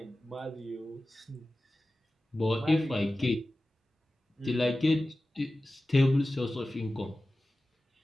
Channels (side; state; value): both; normal; correlation 0.95